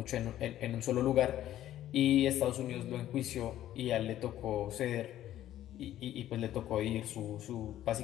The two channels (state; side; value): quieter; right; 12.8 dB